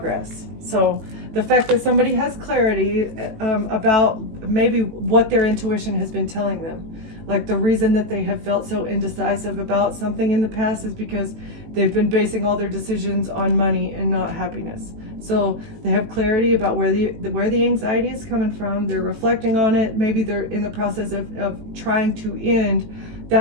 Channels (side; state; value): left; late; 18 ms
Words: So the fact that somebody has clarity about maybe what their intuition has been telling them. Like, the reason that they have felt so indecisive about something in the past is because they've been basing all their decisions on money and not happiness. So they have clarity about where the anxiety is coming from. They're reflecting on it. Maybe they're in the process of trying to end